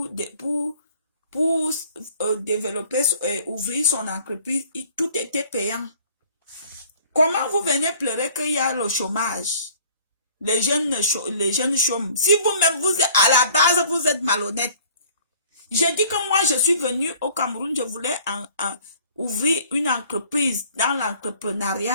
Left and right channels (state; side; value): inverted; both; correlation -0.53